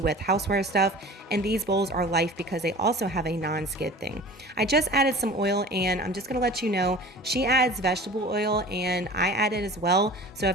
with houseware stuff, and these bowls are life because they also have a non-skid thing. I just added some oil, and I'm just going to let you know she adds vegetable oil and I add it as well. So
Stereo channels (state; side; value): normal; both; correlation 0.40